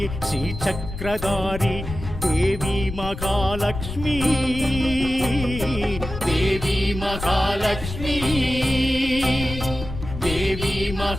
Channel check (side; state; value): left; noise; rumble, 8 dB below the sound